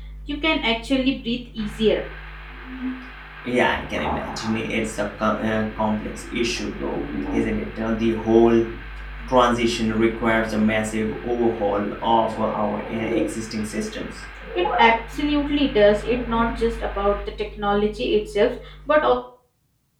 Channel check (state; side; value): identical; both; correlation 1.00